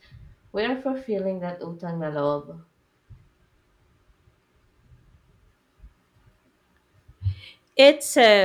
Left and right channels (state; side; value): identical; both; correlation 1.00